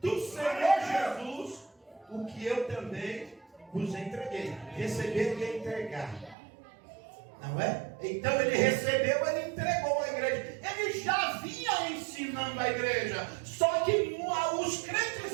do Senhor Jesus o que eu também vos entreguei. Receber e entregar, não é? Então ele recebeu, ele entregou à igreja. Ele já vinha ensinando a igreja, só que os crentes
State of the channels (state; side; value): drops out; left; at 6.4 s